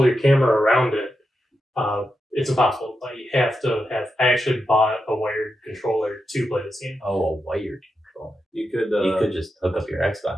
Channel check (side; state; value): both; normal; correlation 0.87